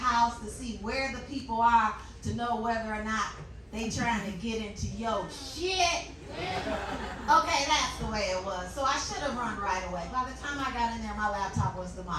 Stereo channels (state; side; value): identical; both; correlation 1.00